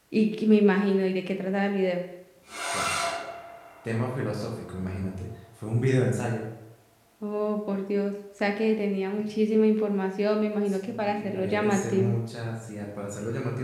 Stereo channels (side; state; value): both; identical; correlation 1.00